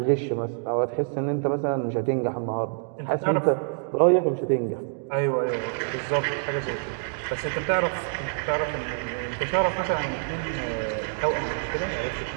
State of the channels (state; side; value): silent; left; digital silence